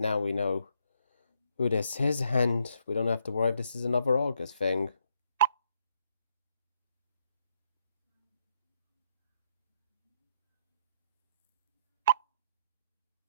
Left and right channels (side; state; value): both; inverted; correlation -0.74